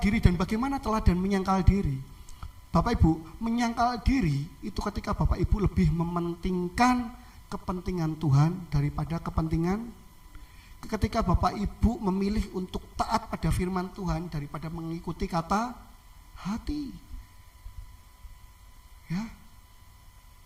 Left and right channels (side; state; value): both; identical; correlation 1.00